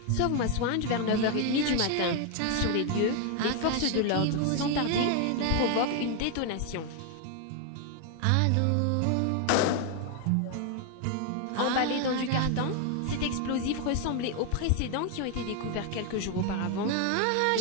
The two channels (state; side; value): different; both; correlation 0.01